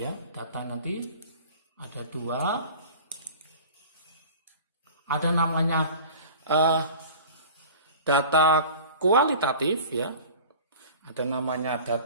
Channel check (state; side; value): inverted; both; correlation -0.41